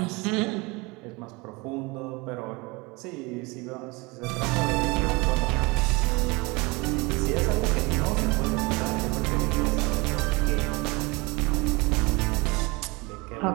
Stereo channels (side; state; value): left; quieter; 25.5 dB